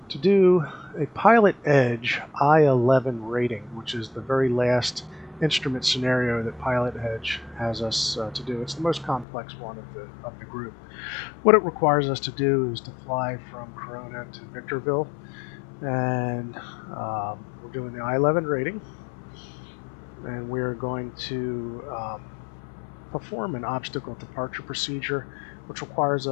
to do a PilotEdge I-11 rating, which is the very last instrument scenario that PilotEdge has us to do. It's the most complex one of the group. What it requires us to do is to fly from Corona to Victorville, and we're doing the I-11 rating, and we're going to perform an obstacle departure procedure, which requires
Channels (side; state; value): right; drops out; at 9.2 s